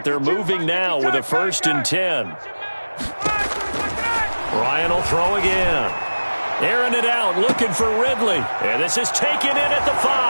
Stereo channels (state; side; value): inverted; both; correlation -1.00